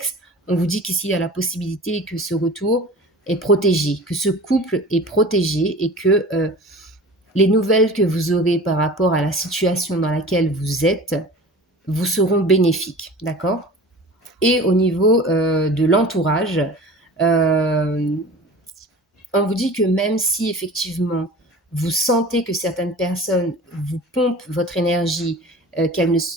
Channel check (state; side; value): normal; both; correlation 0.39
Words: on vous dit qu'ici il y a la possibilité que ce retour est protégé, que ce couple est protégé et que les nouvelles que vous aurez par rapport à la situation dans laquelle vous êtes vous seront bénéfiques, d'accord? Et au niveau de l'entourage, euh, on vous dit que même si effectivement vous sentez que certaines personnes vous pompent votre énergie,